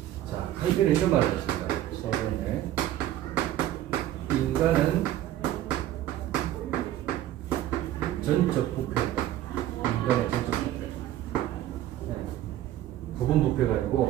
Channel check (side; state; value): left; quieter; 13.1 dB